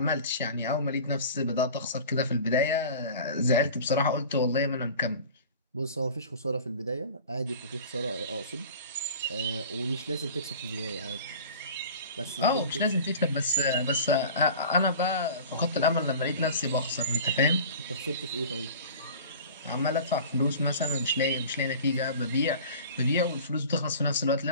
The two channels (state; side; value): inverted; both; correlation -0.40